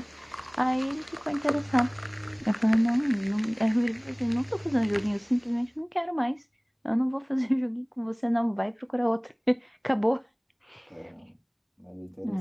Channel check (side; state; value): both; identical; correlation 1.00